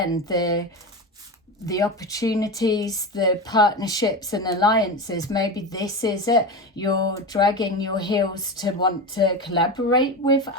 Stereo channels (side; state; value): both; normal; correlation 0.22